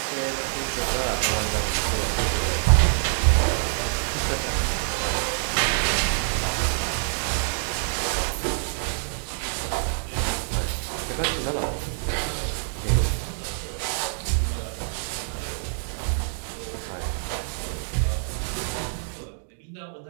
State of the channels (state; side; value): silent; left; digital silence